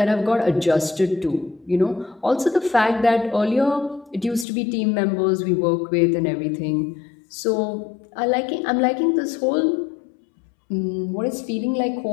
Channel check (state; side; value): drops out; right; at 4.5 s